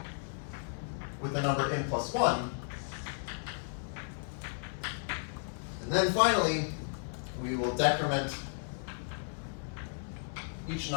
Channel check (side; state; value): right; silent; 55 dB below the other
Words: with the number n plus 1. And then finally, we will decrement each